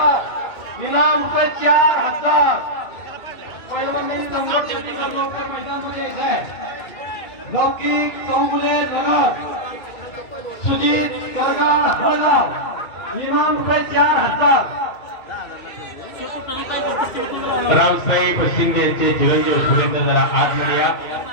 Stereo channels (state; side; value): late; right; 2.6 ms